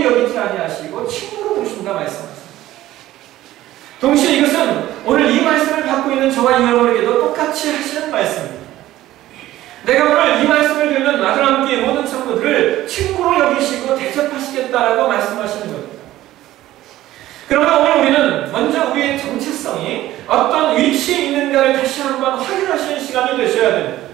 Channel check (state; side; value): quieter; left; 14.9 dB